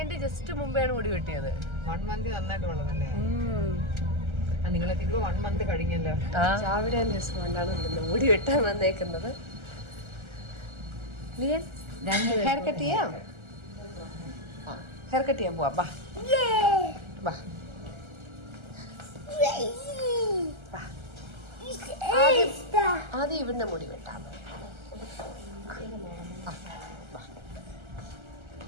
ജസ്റ്റ് മുമ്പെയാണ് മുടി വെട്ടിയത്. 1 month നന്നായിട്ട് വളർന്നല്ലേ? നിങ്ങളൊക്കെ 1 month കഴിഞ്ഞല്ലോ. രാവിലെ രസമുണ്ടാണ് മുടി വെട്ടാൻ വന്നേക്കുന്നത്. ലിയൻ ഹെയർ കട്ട് ചെയ്യാം. ഹെയർ കട്ട് ചെയ്യാൻ പോവാം. ബാ ബാ ആദ്യം ഇവിടുന്ന് മുടി വെട്ടാം.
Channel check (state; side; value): late; left; 1.3 ms